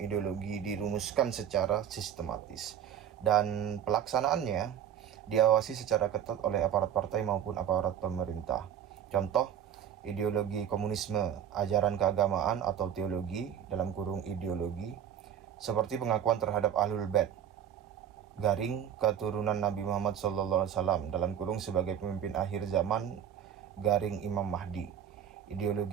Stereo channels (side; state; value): left; quieter; 9.1 dB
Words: ideologi dirumuskan secara sistematis, dan pelaksanaannya diawasi secara ketat oleh aparat partai maupun aparat pemerintah. Contoh, ideologi komunisme, ajaran keagamaan atau teologi, dalam kurung ideologi, seperti pengakuan terhadap Ahlul Bait, garing keturunan Nabi Muhammad SAW, dalam kurung sebagai pemimpin akhir zaman, garing Imam Mahdi.